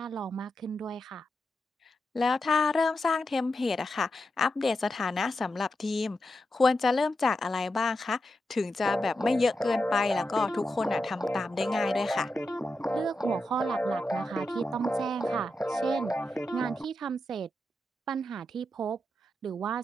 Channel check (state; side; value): normal; both; correlation 0.88